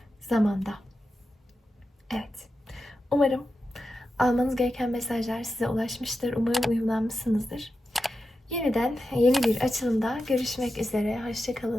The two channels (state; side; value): normal; both; correlation 0.90